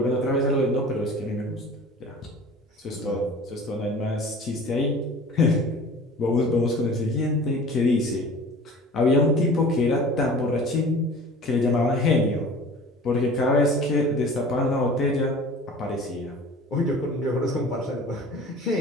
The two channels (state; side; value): normal; both; correlation 0.42